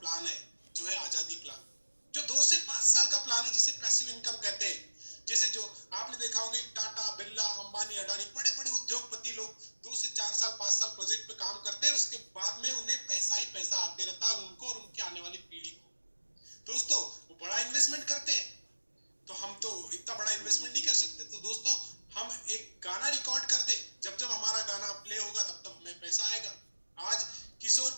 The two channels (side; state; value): both; inverted; correlation -1.00